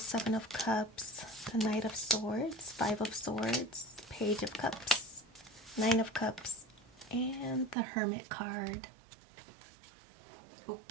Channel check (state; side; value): drops out; left; at 7.8 s